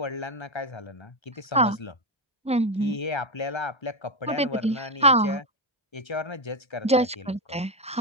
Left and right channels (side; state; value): both; normal; correlation 0.09